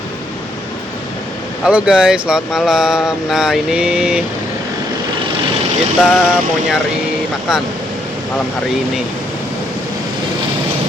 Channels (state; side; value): normal; both; correlation 0.73